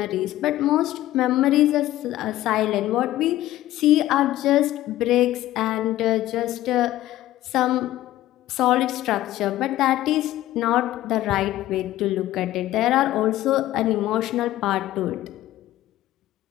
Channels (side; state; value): right; quieter; 14.8 dB